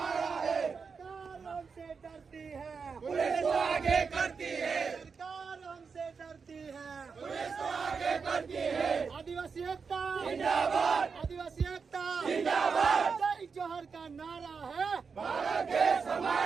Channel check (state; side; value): quieter; left; 5.4 dB